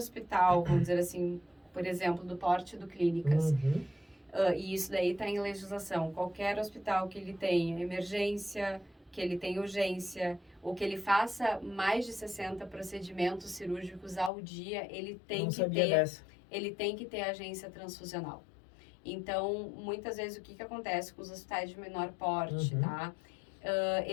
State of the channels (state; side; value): drops out; right; at 14.3 s